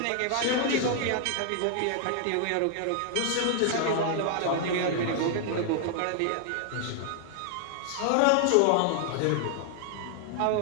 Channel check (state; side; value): different; both; correlation 0.00